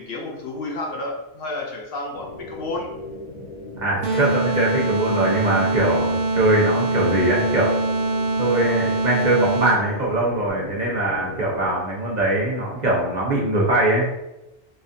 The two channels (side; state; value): both; normal; correlation -0.15